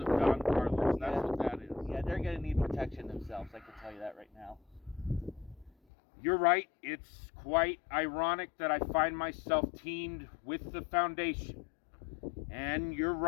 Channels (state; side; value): drops out; right; at 5.7 s